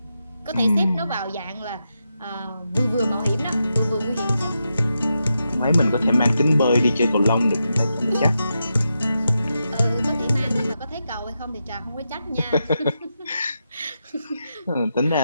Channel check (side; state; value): both; inverted; correlation -0.86